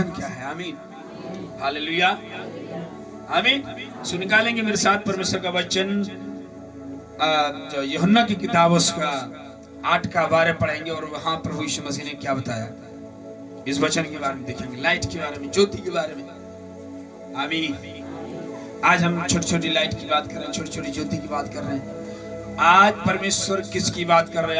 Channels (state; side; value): identical; both; correlation 1.00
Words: क्या है। आमीन, हालेलुया, आमीन। सो निकालेंगे मेरे साथ परमेश्वर का वचन, जो यूहन्ना की किताब उसका 8 का 12 पढ़ेंगे, और वहां प्रभु यीशु मसीह ने क्या बताया इस वचन के बारे में देखेंगे, लाइट के बारे में, ज्योति के बारे में। आमीन। आज हम छोटी छोटी लाइट की बात कर रहे हैं, छोटी छोटी ज्योति की बात कर रहे हैं। आज परमेश्वर किसकी बात कर रहे